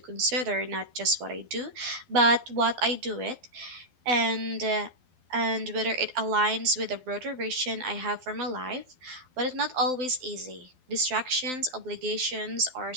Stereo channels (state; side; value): late; left; 12 ms